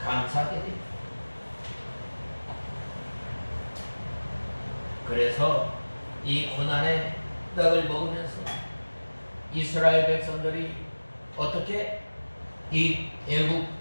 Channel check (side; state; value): both; inverted; correlation -1.00